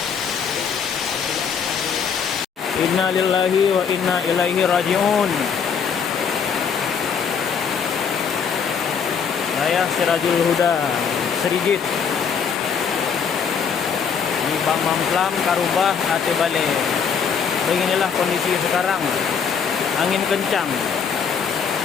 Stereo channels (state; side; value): quieter; right; 6.6 dB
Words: Inna lillahi wa inna ilaihi raji'un. Saya Sirajul Huda, Serigit. Di Bang Mamplam, Karubah, Ate Bale. Beginilah kondisi sekarang. Angin kencang.